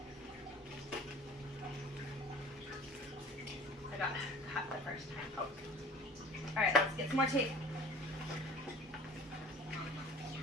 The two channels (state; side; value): normal; both; correlation 0.45